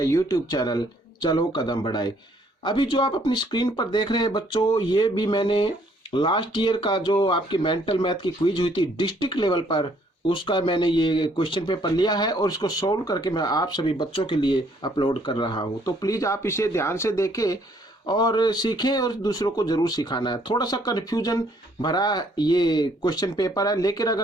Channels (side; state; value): both; normal; correlation 0.65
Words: चैनल चलो कदम बढ़ाए। अभी जो आप अपनी स्क्रीन पर देख रहे हैं बच्चों, ये भी मैंने लास्ट ईयर का जो आपकी मेंटल मैथ की क्विज हुई थी डिस्ट्रिक्ट लेवल पर, उसका मैंने ये क्वेश्चन पेपर लिया है और इसको सोल्व करके मैं आप सभी बच्चों के लिए अपलोड कर रहा हूँ। तो प्लीज़ आप इसे ध्यान से देखें और सीखें और दूसरों को जरूर सिखाना है। थोड़ा सा कन्फ्यूजन भरा ये क्वेश्चन पेपर है, लेकिन